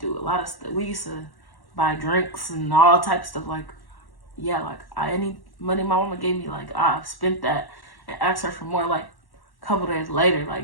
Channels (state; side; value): late; right; 1.1 ms